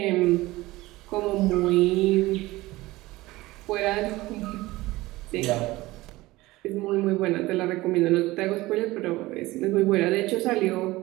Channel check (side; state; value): left; quieter; 19.1 dB